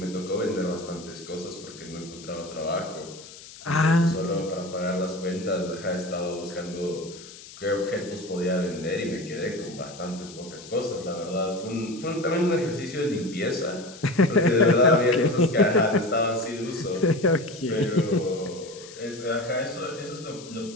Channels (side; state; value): left; noise; hiss, 17 dB below the sound